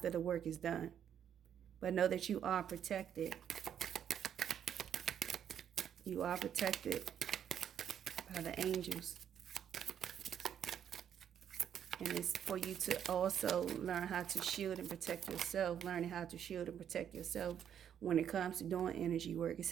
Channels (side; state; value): left; quieter; 9.2 dB